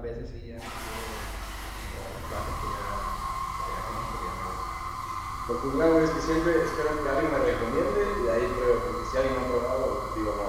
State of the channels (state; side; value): identical; both; correlation 1.00